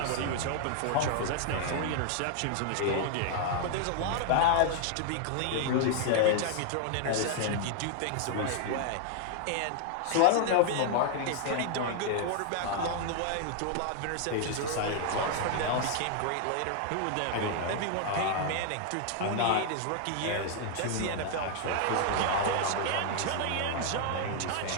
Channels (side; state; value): both; different; correlation 0.00